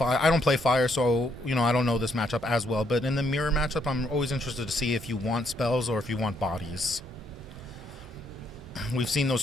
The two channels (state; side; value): normal; both; correlation 0.72